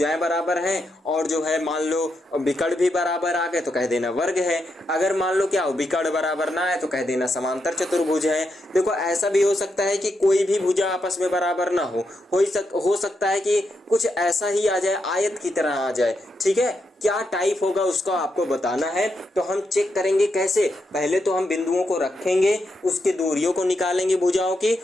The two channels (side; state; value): both; normal; correlation 0.83